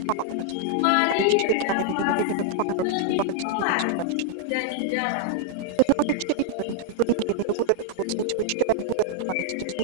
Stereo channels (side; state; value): both; different; correlation 0.00